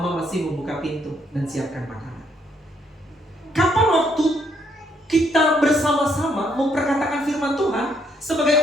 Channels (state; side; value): normal; both; correlation 0.71